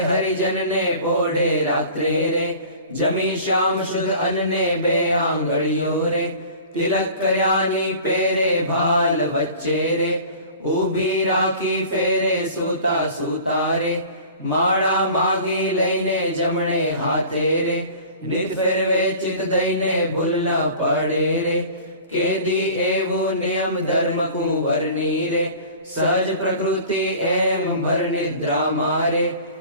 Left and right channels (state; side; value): inverted; both; correlation -0.43